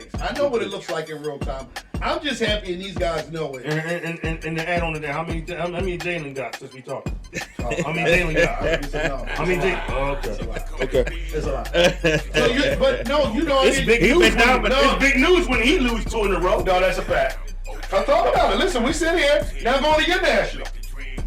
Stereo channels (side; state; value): both; identical; correlation 1.00